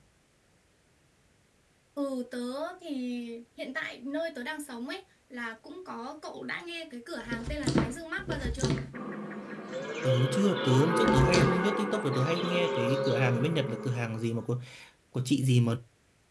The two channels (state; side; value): identical; both; correlation 1.00